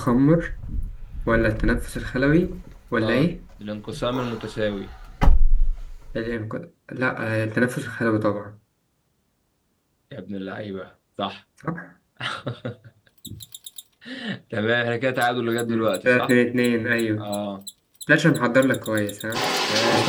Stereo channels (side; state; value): both; identical; correlation 1.00